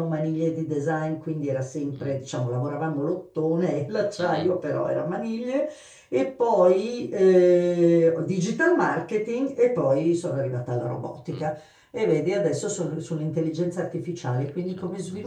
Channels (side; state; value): both; identical; correlation 1.00